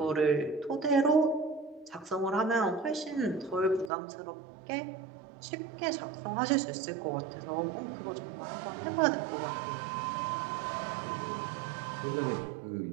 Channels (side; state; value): left; drops out; at 3.9 s